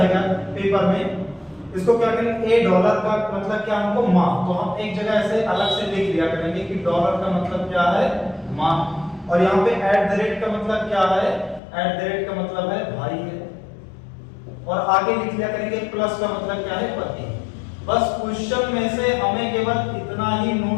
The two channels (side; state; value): right; drops out; at 11.6 s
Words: पेपर में। इसको क्या करेंगे? $a का मतलब क्या हमको? माँ। तो हम एक जगह ऐसे अलग से लिख लिया करेंगे कि डॉलर का मतलब क्या है? माँ। और यहाँ पे @ का मतलब क्या है? @ का मतलब है भाई है। और आगे लिख लिया करेंगे प्लस का मतलब क्या है? पति। बस क्वेश्चन में से हमें केवल इतना ही